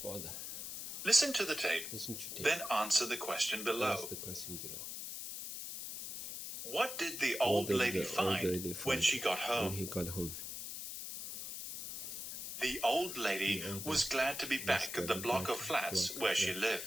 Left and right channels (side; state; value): left; noise; hiss, 7 dB below the sound